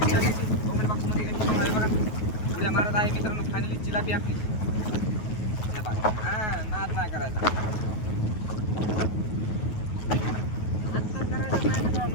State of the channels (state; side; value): late; right; 9.4 ms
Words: जिलाबीची कमेंट बॉक्समध्ये आहे बघा. उड्या मारत आहे मित्रांनो फायनली जिलाबी आपली. हां नाद नाही करायचा, नाद तर करायचं नाही